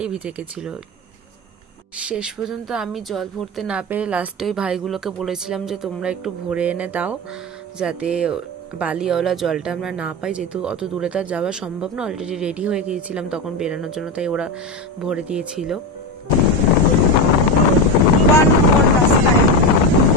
ভিজে গেছিল। শেষ পর্যন্ত আমি জল ভরতে না পেরে লাস্টে ওই ভাইগুলোকে বলেছিলাম যে তোমরা একটু ভরে এনে দাও, যাতে বালিওয়ালা জলটা আমরা না পাই, যেহেতু অত দূরে তার যাওয়া সম্ভব না। অলরেডি রেডি হয়ে গিয়েছিলাম তখন বেরানোর জন্য, তাই ওরা ভরে দিয়েছিল। ওয়ান মোর রাস্তায়।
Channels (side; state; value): both; normal; correlation 0.16